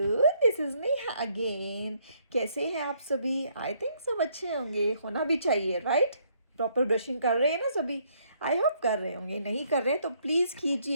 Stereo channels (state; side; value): inverted; both; correlation -0.68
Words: This is Neha again. कैसे हैं आप सभी? आई थिंक सब अच्छे होंगे, होना भी चाहिए, राइट? प्रॉपर ब्रशिंग कर रहे हैं ना सभी? आई होप कर रहे होंगे। नहीं कर रहे तो प्लीज़